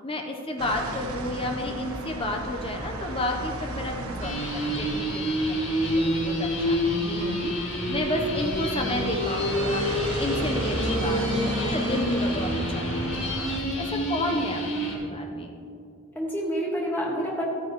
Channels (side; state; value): both; normal; correlation 0.42